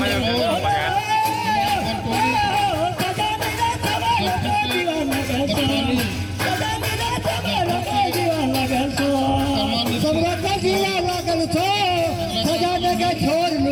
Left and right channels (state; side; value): identical; both; correlation 1.00